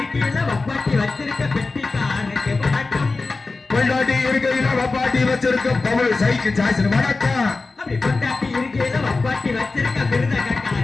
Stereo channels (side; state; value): right; quieter; 3.7 dB